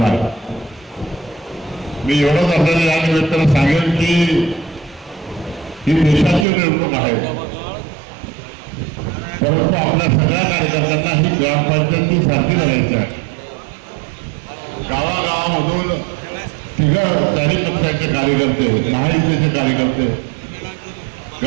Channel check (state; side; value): drops out; left; at 6.5 s